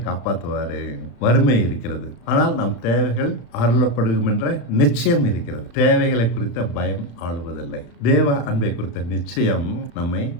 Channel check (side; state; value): right; late; 34 ms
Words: காப்பாற்றுவாரு. வறுமை இருக்கிறது, ஆனால் நம் தேவைகள் அருளப்படும் என்ற நிச்சயம் இருக்கிறது. தேவைகளை குறித்த பயம் ஆளுவதில்லை. தேவ அன்பை குறித்த நிச்சயம் நம்மை